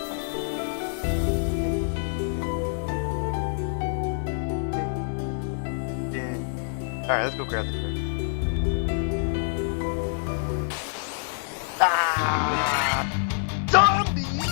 Alright, let's go grab the treasure. Ah! Zombies! You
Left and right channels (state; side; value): silent; right; 61 dB below the other